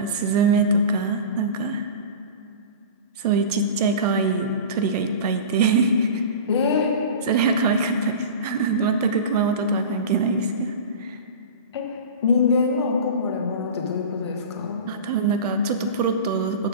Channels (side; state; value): both; inverted; correlation -0.32